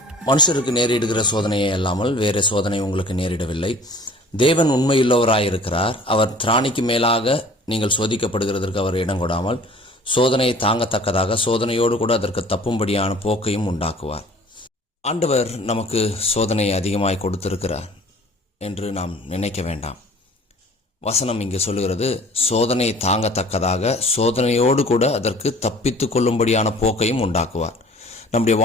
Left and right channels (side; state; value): both; normal; correlation 0.49